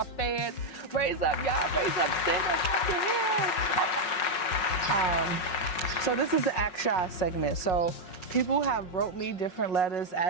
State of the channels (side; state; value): right; late; 5.4 ms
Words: fans. Raise up, y'all. Raise up. Stand up. Clap your hands. So this is the Ask Shy segment. So people have wrote me different letters